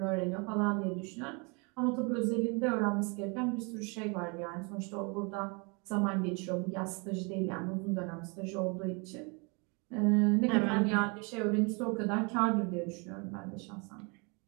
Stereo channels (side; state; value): left; quieter; 31.9 dB